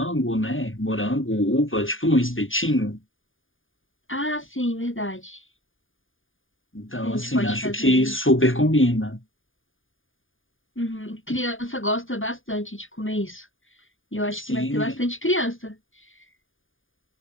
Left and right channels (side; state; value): right; late; 0.58 ms